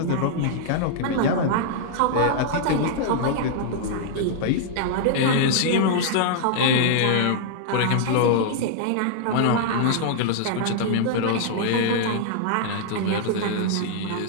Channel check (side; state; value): both; different; correlation -0.01